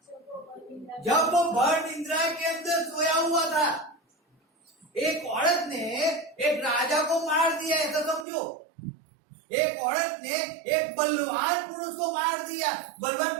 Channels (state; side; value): drops out; left; at 8.2 s